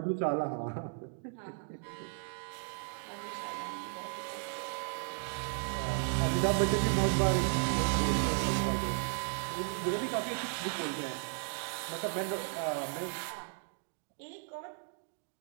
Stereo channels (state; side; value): silent; left; 54 dB below the other